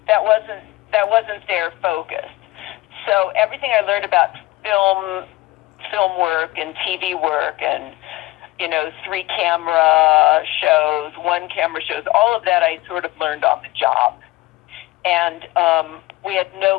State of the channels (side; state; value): right; quieter; 18.9 dB